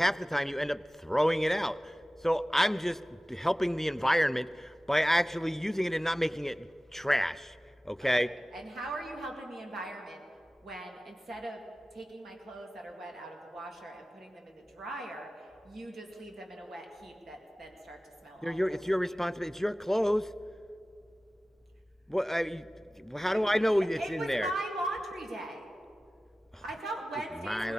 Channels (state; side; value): normal; both; correlation 0.96